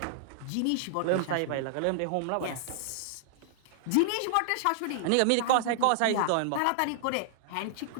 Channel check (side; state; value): both; different; correlation -0.01